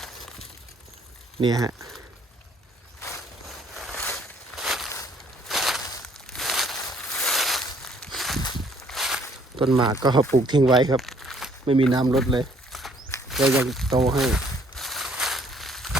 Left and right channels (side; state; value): both; normal; correlation 0.62